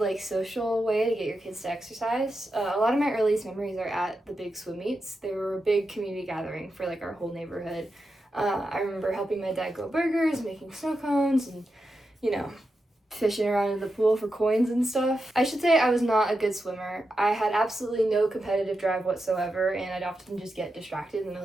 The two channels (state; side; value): normal; both; correlation 0.88